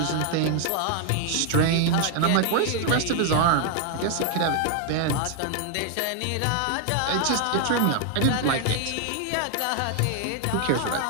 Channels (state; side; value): different; both; correlation 0.00